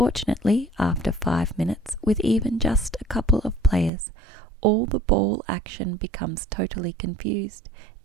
after 5 minutes, with even just a couple of players, all the ball action becomes totally confused,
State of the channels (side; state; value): left; drops out; at 3.9 s